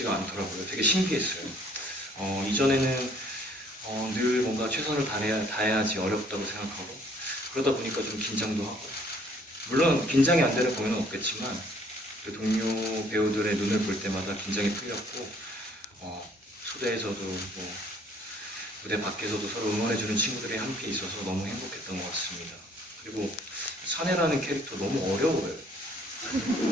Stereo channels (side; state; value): both; normal; correlation 0.60